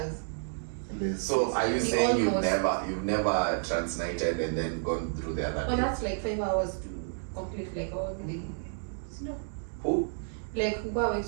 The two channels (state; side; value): silent; left; digital silence